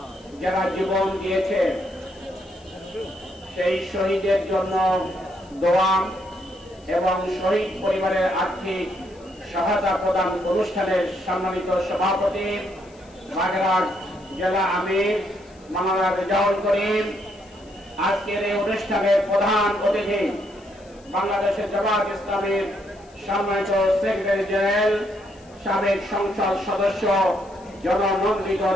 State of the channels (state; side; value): noise; left; hiss, 29 dB below the sound